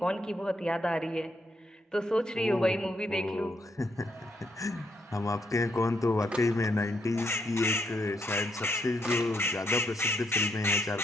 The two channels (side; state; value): both; normal; correlation 0.76